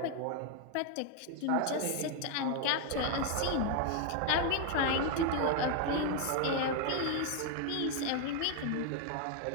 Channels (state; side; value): different; both; correlation 0.01